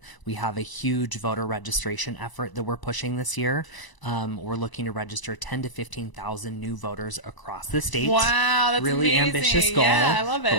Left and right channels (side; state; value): right; late; 1.0 ms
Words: We have a huge voter registration effort that we're pushing this year. We're looking to register 10 to 15,000 new voters across the state. Wow, that's really amazing. Ambitious goal. Yeah, I love it.